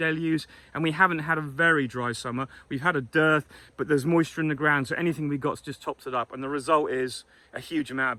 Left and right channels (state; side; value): identical; both; correlation 1.00